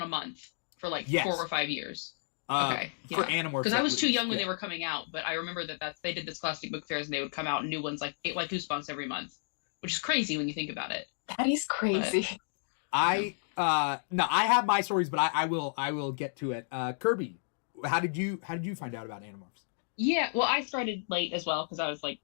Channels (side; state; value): right; silent; digital silence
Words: a month for like 4 or 5 years. Okay, for Animorphs, because I was too young when they were coming out, but I remember that they did the Scholastic Book Fairs, and they would come out new ones like Goosebumps every month, which is crazy when you think about it. That is crazy. But no, I have my stories, but I will get to it. Kirby, how did you find out about Animorphs? Yeah, well, I started late as well because I was like